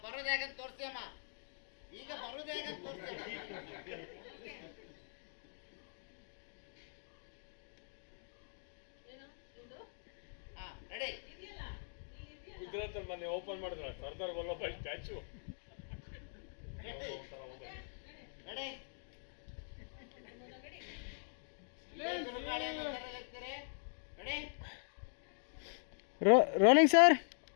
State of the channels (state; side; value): silent; right; digital silence